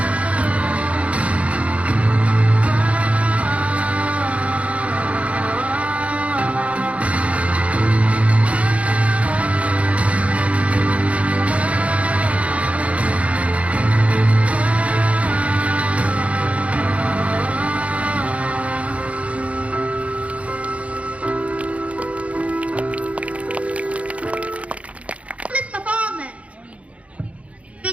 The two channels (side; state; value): left; late; 0.064 ms